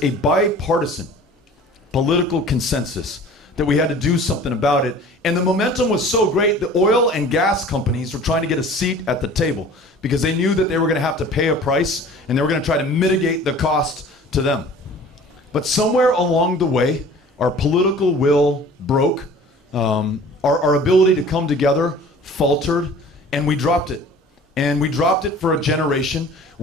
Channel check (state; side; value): normal; both; correlation 0.45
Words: a bipartisan political consensus that we had to do something about it. And the momentum was so great, the oil and gas companies were trying to get a seat at the table because they knew that they were going to have to pay a price and they were going to try to mitigate the cost to them. But somewhere along the way, our political will broke, our ability to come together faltered, and we dropped it. And we dropped it for a generation.